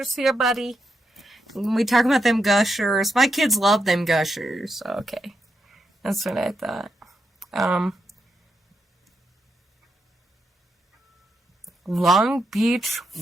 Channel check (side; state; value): both; normal; correlation 0.83